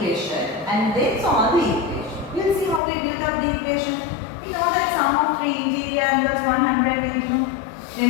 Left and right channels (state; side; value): drops out; right; at 2.8 s